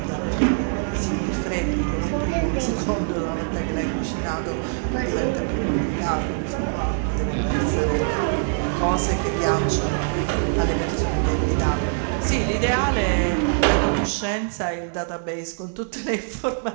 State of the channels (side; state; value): left; silent; 63 dB below the other